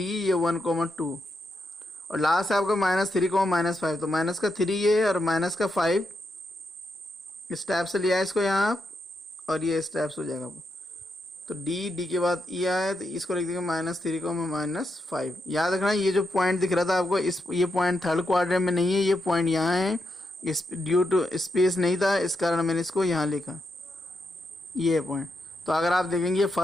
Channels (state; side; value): normal; both; correlation 0.84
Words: 1,2 और लास्ट है आपका -3,-5, तो माइनस का 3 ये और माइनस का 5 स्टेप से लिया है इसको यहाँ आप, और ये स्टेप्स हो जाएगा। तो d के बाद e आया, तो इसको लिख देंगे -3,-5। याद रखना ये जो पॉइंट दिख रहा था आपको, ये पॉइंट थर्ड क्वाड्रेंट में नहीं है, ये पॉइंट यहाँ है, इस ड्यू टू स्पेस नहीं था इस कारण मैंने इसको यहाँ लिखा, ये पॉइंट। तो अगर आप देखेंगे ये